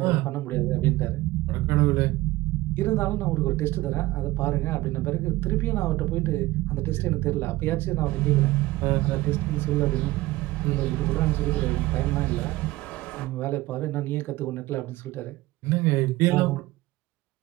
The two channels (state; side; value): quieter; left; 18.6 dB